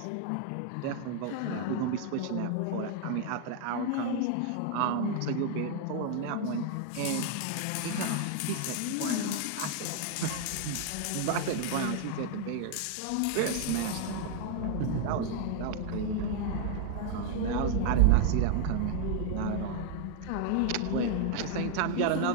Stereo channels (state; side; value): different; both; correlation 0.00